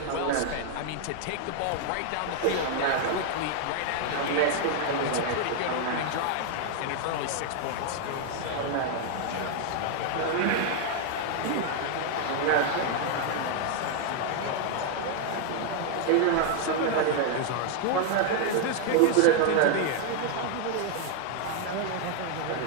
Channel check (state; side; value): different; both; correlation 0.00